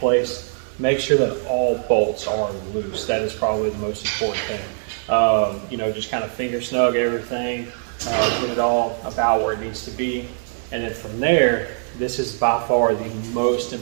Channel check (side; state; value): left; silent; digital silence